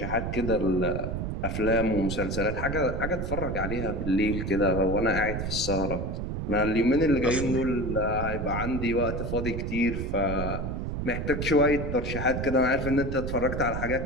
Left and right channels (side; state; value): right; noise; rumble, 3 dB below the sound